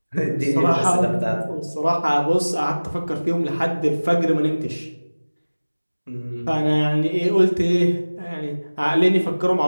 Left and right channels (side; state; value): both; inverted; correlation -1.00